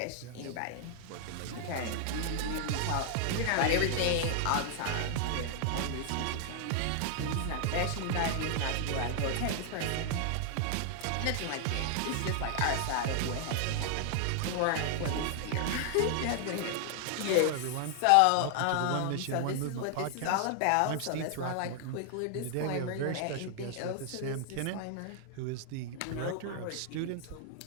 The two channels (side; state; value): both; different; correlation 0.00